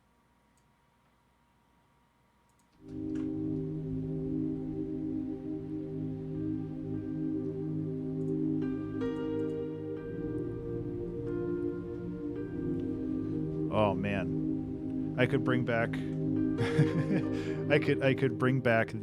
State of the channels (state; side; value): identical; both; correlation 1.00